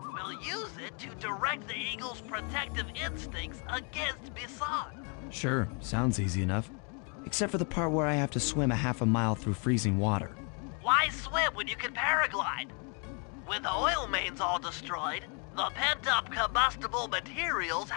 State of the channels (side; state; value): right; quieter; 36.6 dB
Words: We'll use it to direct the eagle's protective instincts against Bison. Sure, sounds easy enough. Except for the part where I have to swim a half a mile through freezing water. Why swim when you can paraglide? With the oil mains all destroyed, the pent-up combustible materials